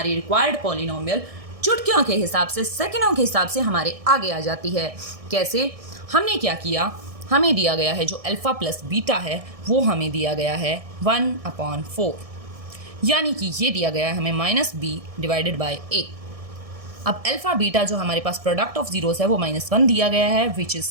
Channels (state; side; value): late; left; 1.6 ms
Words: रिक्वायर्ड पॉलिनोमियल चुटकियों के हिसाब से, सेकंडों के हिसाब से हमारे आगे आ जाती है। कैसे, हमने क्या किया, हमें दिया गया है जो अल्फ़ा प्लस बीटा है वो हमें दिया गया है 1/4, यानी कि ये दिया गया है हमें -b/a। अब अल्फ़ा बीटा जो हमारे पास प्रोडक्ट ऑफ जीरोज़ है वो -1 दिया गया है विच इज़